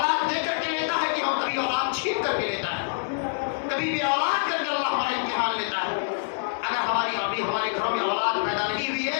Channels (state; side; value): silent; right; digital silence